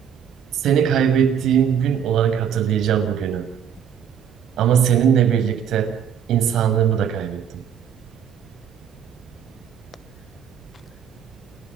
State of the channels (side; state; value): left; quieter; 8.4 dB